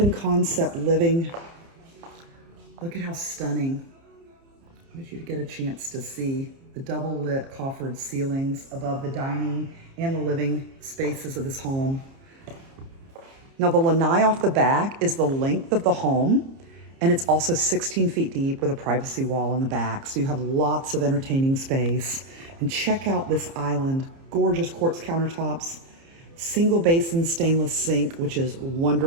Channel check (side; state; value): left; late; 30 ms